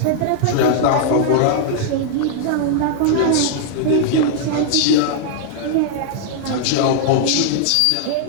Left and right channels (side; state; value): both; different; correlation -0.01